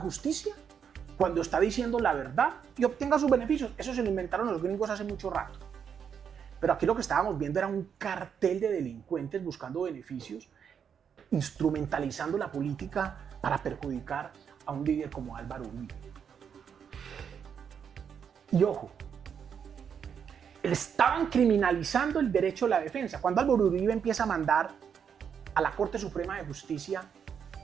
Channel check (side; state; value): left; quieter; 7.5 dB